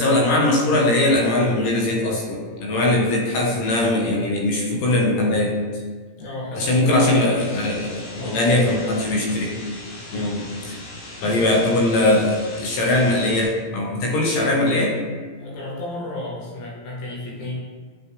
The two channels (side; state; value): right; late; 17 ms